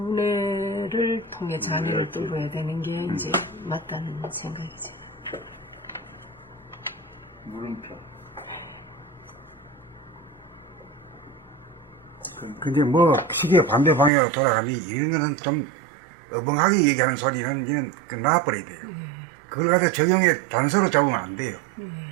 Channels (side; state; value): left; drops out; at 14.1 s